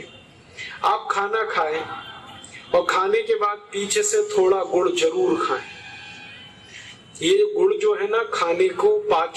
आप खाना खाएं और खाने के बाद पीछे से थोड़ा गुड़ जरूर खाएं। ये गुड़ जो है ना, खाने को,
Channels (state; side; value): identical; both; correlation 1.00